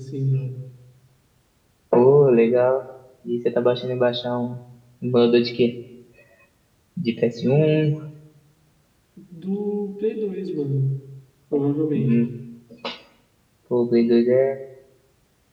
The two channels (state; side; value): identical; both; correlation 1.00